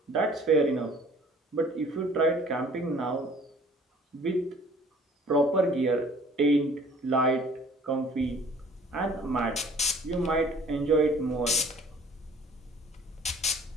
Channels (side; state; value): both; normal; correlation 0.53